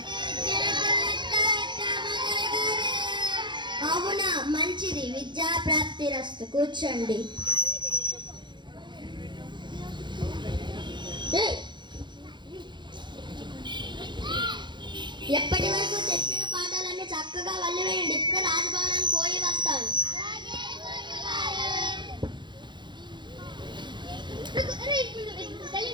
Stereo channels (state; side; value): late; left; 0.22 ms